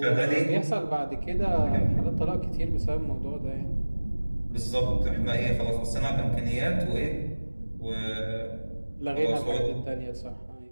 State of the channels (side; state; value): both; inverted; correlation -1.00